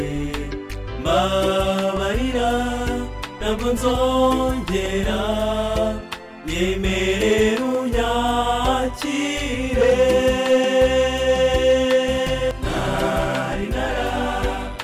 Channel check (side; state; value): both; identical; correlation 1.00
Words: mbabarira ntabwo nzongera nyemerera unyakire nari